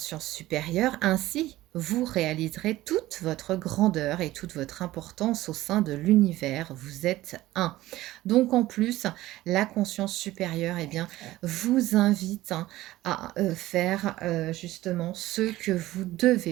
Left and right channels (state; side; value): quieter; left; 16.5 dB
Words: supérieure ainsi vous réaliserez toute votre grandeur et toute votre importance au sein de l'univers. Vous êtes un. Donc en plus, la conscience supérieure, eh bien, vous invite hein, à faire justement ce que vous